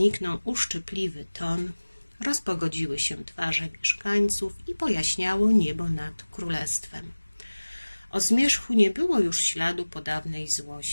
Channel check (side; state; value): both; inverted; correlation -1.00